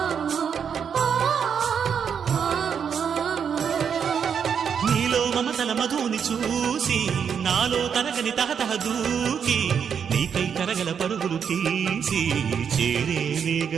నీలో మమతల మధుని చూసి నాలో తరగని తహతహ దూకి నీకై తరగల పరుగులు తీసి చేరే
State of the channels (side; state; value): left; quieter; 7.3 dB